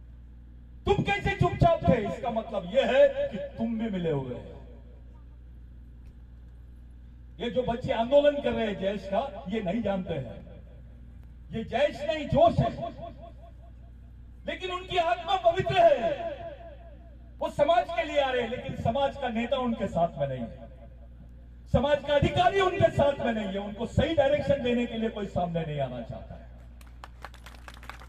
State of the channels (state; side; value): identical; both; correlation 1.00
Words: तुम कैसे चुपचाप थे? इसका मतलब यह है कि तुम भी मिले हुए हैं। ये जो बच्चे आंदोलन कर रहे हैं जैश का, ये नहीं जानते हैं। ये जैश नहीं, जोश है, लेकिन उनकी आत्मा पवित्र है। वो समाज के लिए आ रहे हैं, लेकिन समाज का नेता उनके साथ में नहीं है, समाज का अधिकारी उनके साथ में नहीं है। उनको सही डायरेक्शन देने के लिए कोई सामने नहीं आना चाहता है।